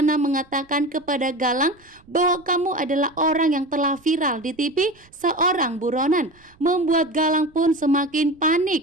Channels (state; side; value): noise; right; rumble, 30 dB below the sound